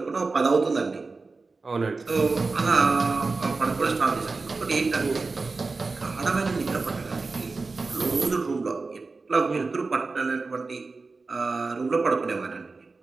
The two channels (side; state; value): left; quieter; 3.9 dB